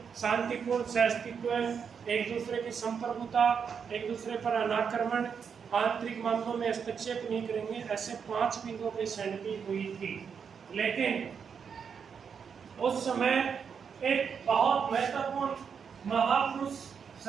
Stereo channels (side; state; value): left; quieter; 6.7 dB